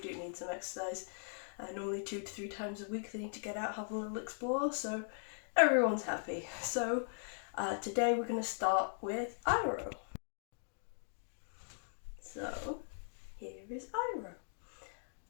need some exercise. Normally 2 to 3 times a week they need to get out, have a little explore, so everyone's happy. So today we're going to start with Iroh. So here is Iroh.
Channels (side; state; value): right; silent; digital silence